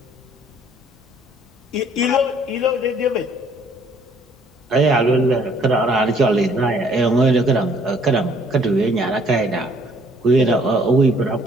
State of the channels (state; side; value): normal; both; correlation 0.61